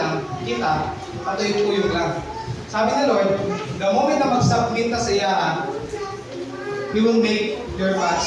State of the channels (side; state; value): both; identical; correlation 1.00